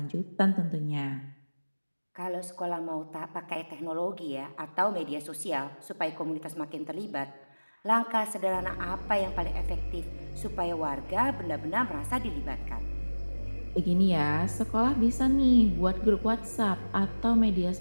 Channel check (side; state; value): both; inverted; correlation -1.00